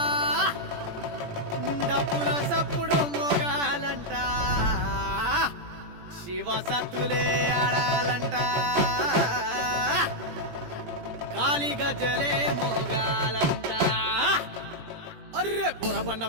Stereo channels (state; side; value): late; left; 17 ms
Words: డప్పుల సప్పుడు మోగాలంట, శివ సత్తులే ఆడాలంట, కాలి గజ్జలే మోగాలంట. అర్రే బొరబండ